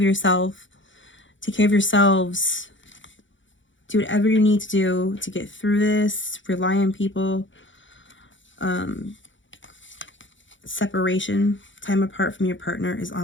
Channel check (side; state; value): right; late; 0.55 ms